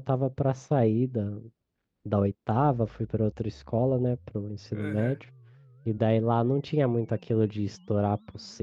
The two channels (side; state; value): both; identical; correlation 1.00